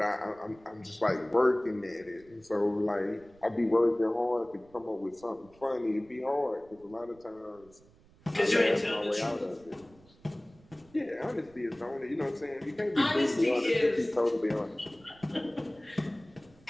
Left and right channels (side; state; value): right; noise; rumble, 27 dB below the sound